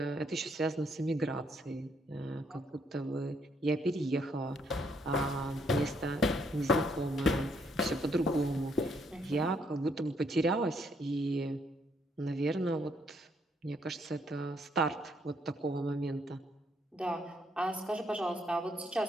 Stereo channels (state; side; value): normal; both; correlation 0.71